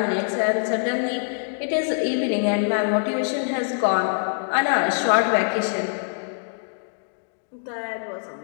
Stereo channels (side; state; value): right; silent; 63 dB below the other